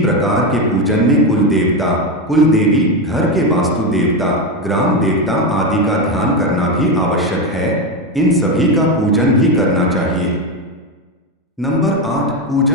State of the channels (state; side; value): normal; both; correlation 0.12